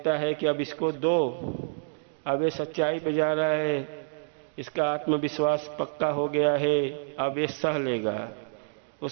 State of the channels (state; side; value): silent; left; digital silence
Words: है कि अब इसको दो, अब ये सच्चाई पे जा रहा है, इसका आत्मविश्वास पक्का हो गया है, अब ये सह लेगा।